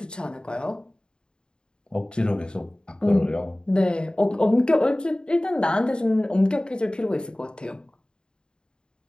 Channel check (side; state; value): right; late; 0.049 ms